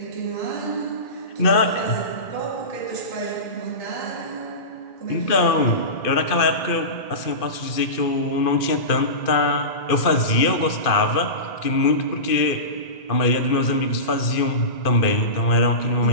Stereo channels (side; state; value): right; late; 2.4 ms